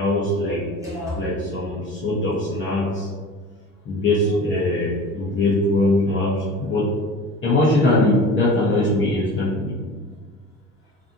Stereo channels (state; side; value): normal; both; correlation 0.38